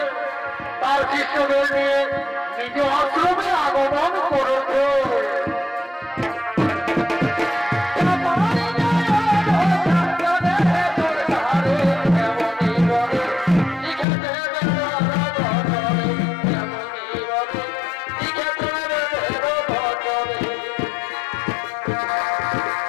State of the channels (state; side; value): drops out; right; at 14.1 s